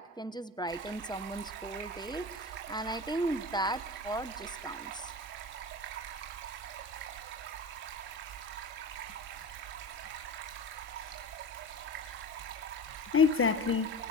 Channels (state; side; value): normal; both; correlation 0.30